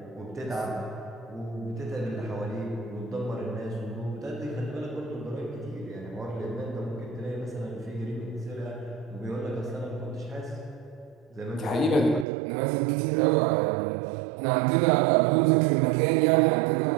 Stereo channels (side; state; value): left; drops out; at 12.2 s